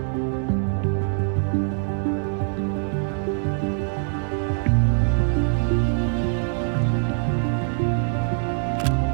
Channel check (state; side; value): silent; left; 63 dB below the other